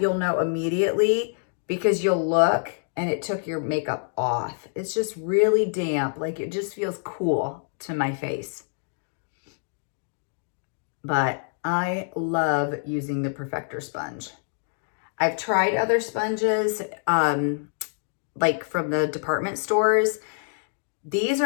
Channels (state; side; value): silent; right; digital silence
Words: know immediately because you'll look and it took your makeup off. It's just really damp. Like it just feels cool to my face. But I love using the Perfector Sponge. I've tried other sponges, like from the department stores. These